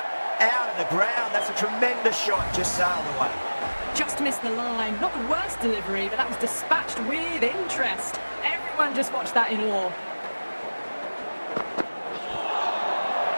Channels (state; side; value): inverted; both; correlation -1.00